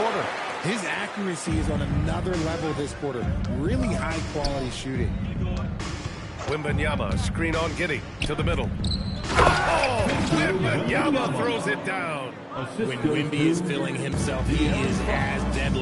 His accuracy is on another level this quarter. Really high-quality shooting. Wembanyama, screen on Giddey to the middle. Oh, Wembanyama throws it down. When Wemby is feeling himself, he is as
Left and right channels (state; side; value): identical; both; correlation 1.00